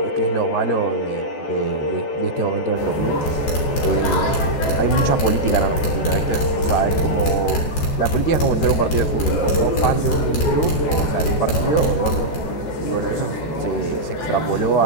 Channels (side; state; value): right; late; 14 ms